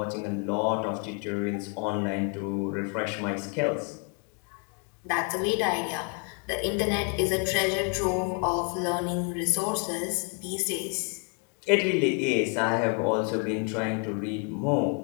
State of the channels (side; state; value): right; quieter; 37.9 dB